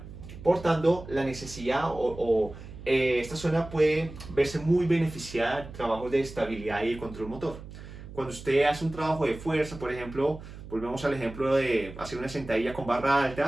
Por tanto, la necesidad esta zona puede verse muy beneficiada de trabajos de estabilidad y de control motor. Cuando usted hace un trabajo de fuerza, por ejemplo, volvemos al ejemplo de hacer una sentadilla con barra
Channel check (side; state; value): right; noise; hum, 14 dB below the sound